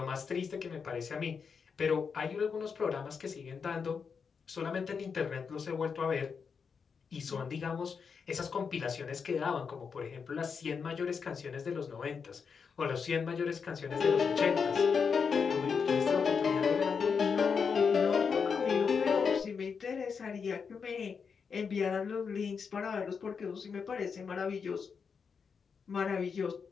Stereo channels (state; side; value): quieter; right; 5.9 dB